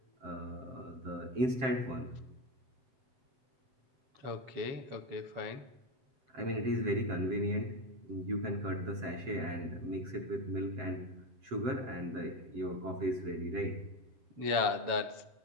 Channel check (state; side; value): late; left; 7.6 ms